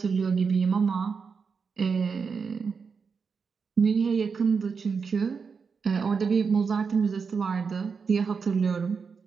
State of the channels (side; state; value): left; quieter; 5.5 dB